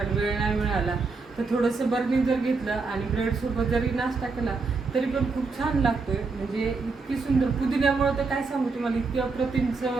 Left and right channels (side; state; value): left; quieter; 4.2 dB